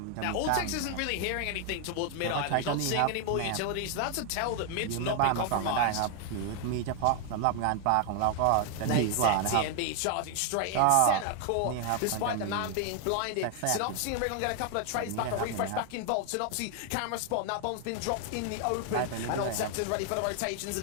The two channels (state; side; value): different; both; correlation 0.00